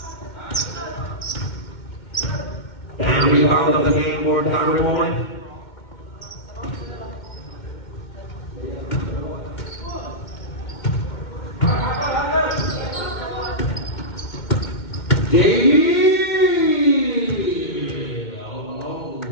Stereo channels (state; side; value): late; right; 2.2 ms